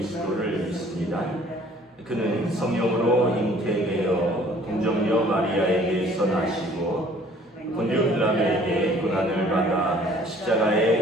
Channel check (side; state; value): both; normal; correlation 0.55